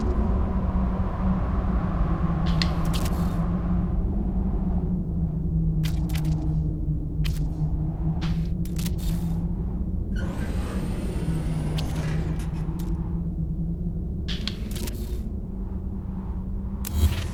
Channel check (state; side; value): identical; both; correlation 1.00